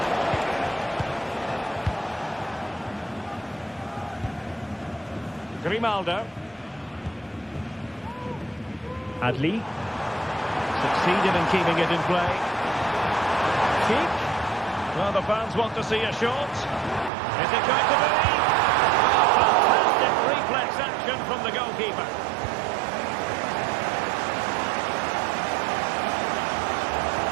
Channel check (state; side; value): drops out; left; at 17.1 s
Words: Grimaldo. Adli. Succeeded in keeping it in play. Sheik. Well, the fans want to see a shot. Is it going to be? Fantastic reflex action from the goalkeeper.